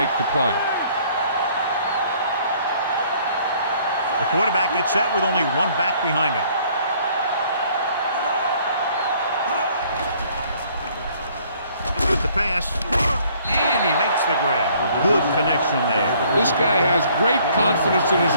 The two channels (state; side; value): inverted; both; correlation -0.60